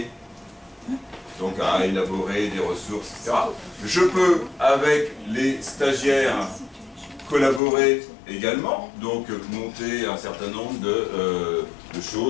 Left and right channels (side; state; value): right; drops out; at 7.6 s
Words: donc à élaborer des ressources, etc. Je peux, avec les stagiaires, collaborer également, donc monter un certain nombre de